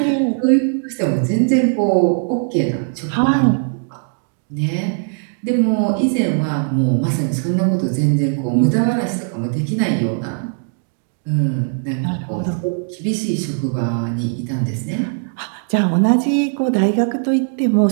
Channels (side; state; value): left; silent; 67 dB below the other